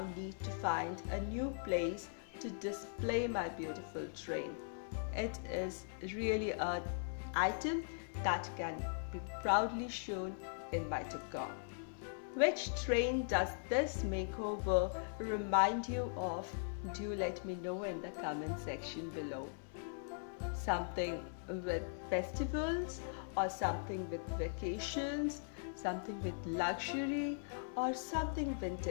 need to find a new place to display my beautiful train. It is really an item that can be proudly shown in my decor. Which train does this makeover remind you of? Do let me know in the comment section below. Something with festivals, or something with vacations, something with luxury, or something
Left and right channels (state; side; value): silent; right; digital silence